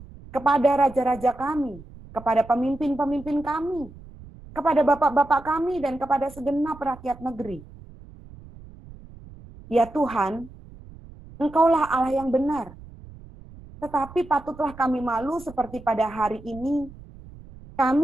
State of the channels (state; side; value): noise; right; rumble, 19 dB below the sound